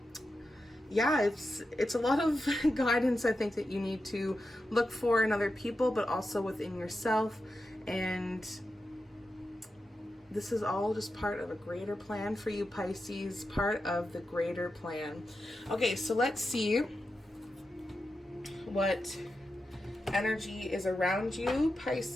yeah, it's a lot of guidance, I think, that you need to look for in other people, but also within yourself. And this is all just part of a greater plan for you, Pisces, part of the greater plan. Okay, so let's see what energy is around you,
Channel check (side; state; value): both; normal; correlation 0.90